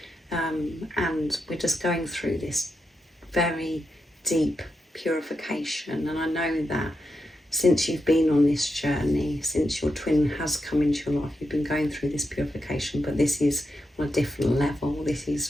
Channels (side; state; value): both; normal; correlation 0.86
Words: and we're just going through this very deep purification. And I know that since you've been on this journey, since your twin has come into your life, you've been going through this purification, but this is on a different level. This